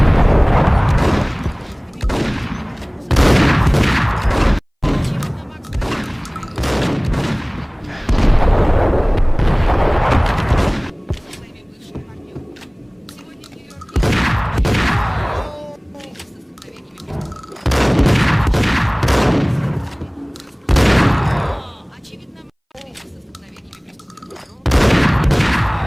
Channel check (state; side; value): identical; both; correlation 1.00